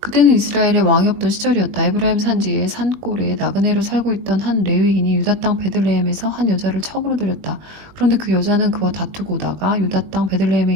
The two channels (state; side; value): late; left; 20 ms